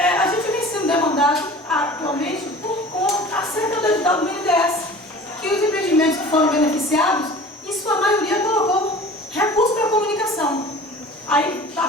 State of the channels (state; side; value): normal; both; correlation 0.42